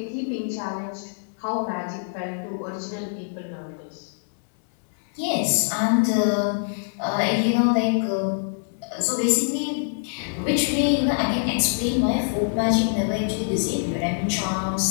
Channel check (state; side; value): silent; right; 62 dB below the other